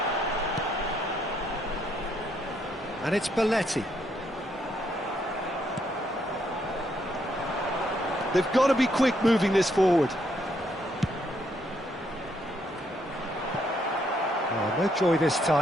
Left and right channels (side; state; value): both; normal; correlation 0.73